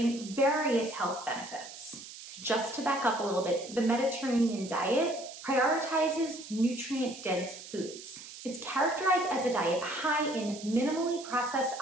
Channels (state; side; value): noise; right; hiss, 14 dB below the sound